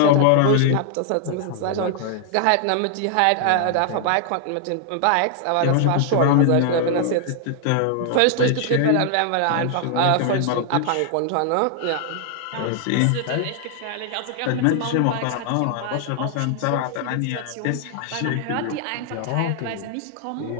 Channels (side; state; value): both; different; correlation 0.00